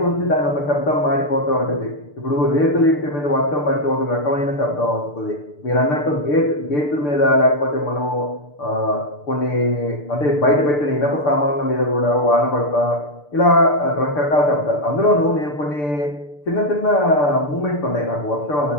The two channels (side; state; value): right; late; 6.8 ms